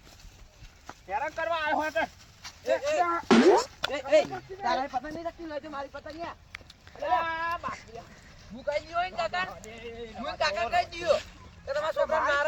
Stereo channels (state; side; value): identical; both; correlation 1.00